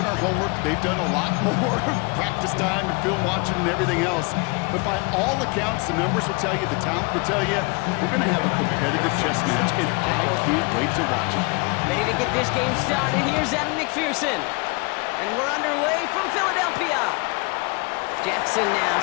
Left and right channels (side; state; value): right; quieter; 29.4 dB